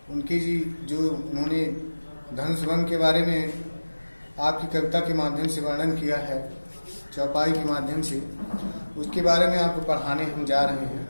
उनकी जो उन्होंने धनुषभंग के बारे में आपकी कविता के माध्यम से वर्णन किया है, चौपाई के माध्यम से, उसके बारे में आपको पढ़ाने हम जा रहे हैं।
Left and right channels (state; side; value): inverted; both; correlation -1.00